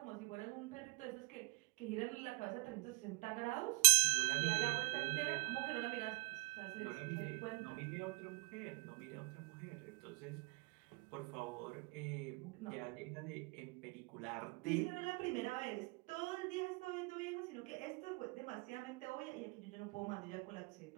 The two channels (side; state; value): left; quieter; 28.8 dB